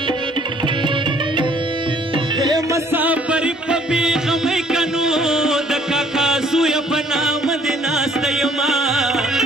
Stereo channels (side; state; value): both; normal; correlation 0.60